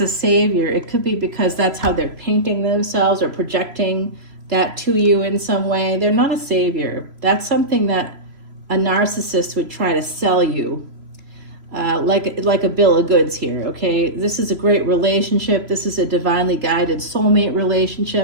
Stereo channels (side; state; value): left; late; 3.0 ms